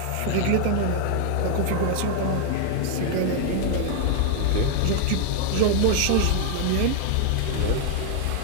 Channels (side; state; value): both; different; correlation 0.00